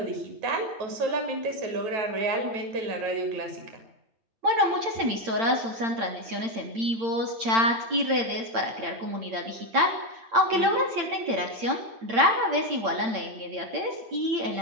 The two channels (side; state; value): left; late; 8.8 ms